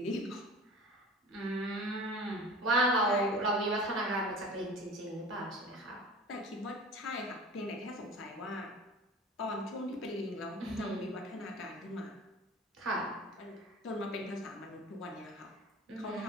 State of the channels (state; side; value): normal; both; correlation 0.39